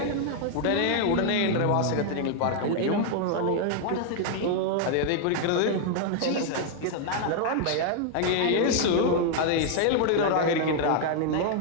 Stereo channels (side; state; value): both; different; correlation 0.00